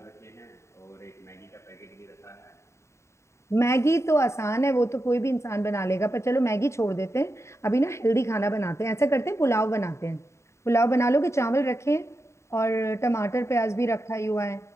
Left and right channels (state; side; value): late; right; 0.14 ms